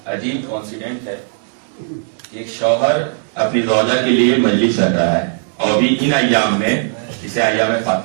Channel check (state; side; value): silent; left; digital silence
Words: عجیب کانسیڈنٹ ہے. ایک شوہر اپنی زوجہ کے لیے مجلس رکھ رہا ہے اور بھی ان ایام میں، اسے ایام